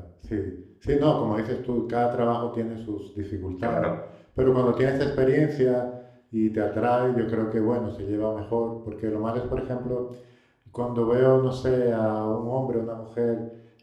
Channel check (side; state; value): both; identical; correlation 1.00